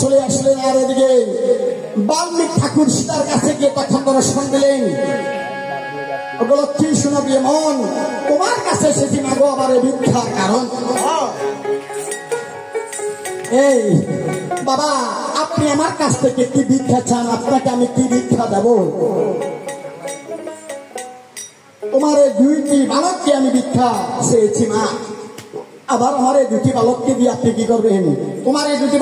চলে আসলেন। আর এদিকে বাল্মীকি ঠাকুর সীতার কাছে গিয়ে তখন দর্শন দিলেন। ওগুলো কি শোনাবি মন, তোমার কাছে সেটি মাগো আবার ভিক্ষার কারণ। এই বাবা, আপনি আমার কাছ থেকে কি ভিক্ষা চান? আপনাকে আমি কি ভিক্ষা দেব? তোমার এই 2টি বালককে আমি ভিক্ষা চেয়েছি মা। আবার আমার এই 2টি বালককে দিয়ে আপনি কি করবেন? তোমার এই 2টি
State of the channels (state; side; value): identical; both; correlation 1.00